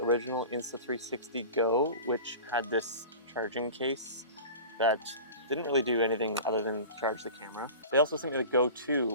Insta360 Go, which had this charging case that didn't really do anything other than charge the camera. They also sent me the Go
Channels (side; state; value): both; inverted; correlation -0.36